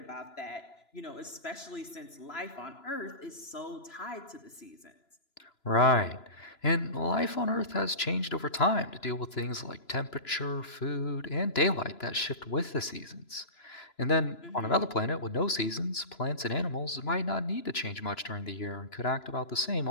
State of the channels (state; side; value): late; right; 3.0 ms